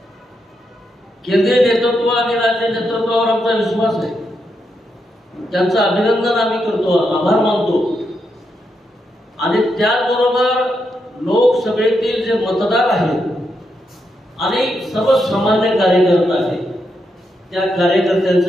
केंद्रीय नेतृत्व आणि राज्य नेतृत्वावर आमचा विश्वास आहे. त्यांचं अभिनंदन आम्ही करतो, आभार मानतो. आणि त्याचबरोबर लोकसभेतील जे मतदार आहेत आणि सर्वसामान्य कार्यकर्ते आहेत त्या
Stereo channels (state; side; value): normal; both; correlation 0.82